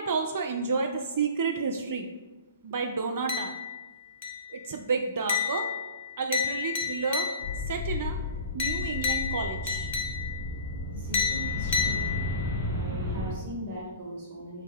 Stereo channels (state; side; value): inverted; both; correlation -0.38